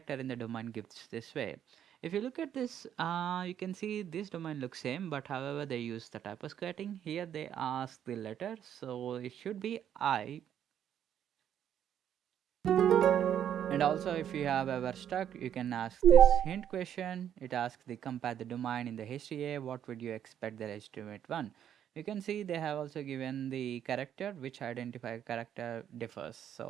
in the domain gives this way? If you look at this, you can see this domain looks same, but however they use the typo squatting. Here they ask the letter, so it should be I. And also, if you have ever stuck, you can ask this hint question. It asks the compare the domain in the HTA. What would you expect the legitimate one? You can see they have also given the character which identify character differs.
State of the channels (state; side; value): quieter; left; 9.8 dB